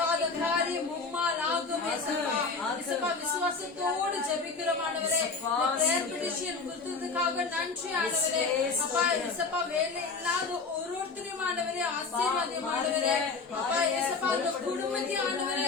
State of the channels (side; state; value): right; quieter; 4.5 dB